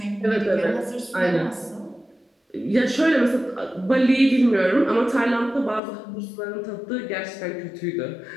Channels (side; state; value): right; drops out; at 5.8 s